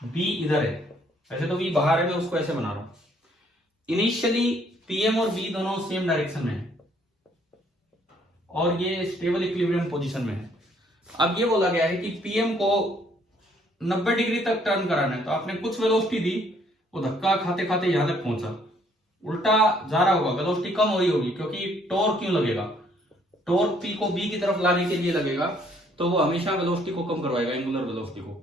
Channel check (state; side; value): normal; both; correlation 0.65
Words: बी इधर है, वैसे तो बी बाहर है, मैं उसको ऐसे बना रहा हूं। इनिशियली पीएम और बी दोनों सेम डायरेक्शन में है और ये स्टेबल इक्विलिब्रियम पोजीशन में है। अब ये बोला गया है कि पीएम को 90 डिग्री तक टर्न कराना है, तो आपने कुछ वेलोसिटी दी, वो धक्का खाते खाते यहां तक पहुंचा, उल्टा जा रहा होगा, वेलोसिटी कम हो रही होगी क्योंकि टॉर्क क्यों लगेगा? टॉर्क पी को बी की तरफ लाने के लिए लगेगा, तो वो हमेशा वेलोसिटी को कम करवाएगा, एंगुलर वेलोसिटी को,